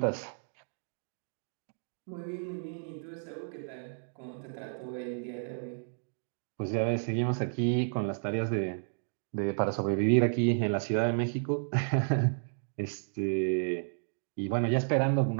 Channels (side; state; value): left; silent; digital silence